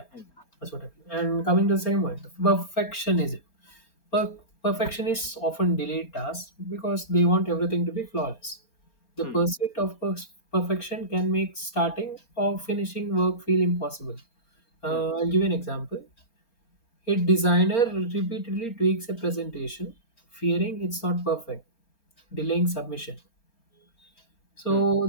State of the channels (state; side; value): late; right; 4.3 ms